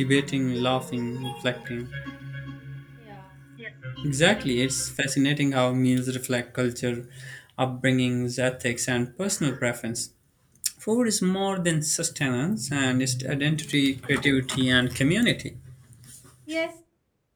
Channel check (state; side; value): identical; both; correlation 1.00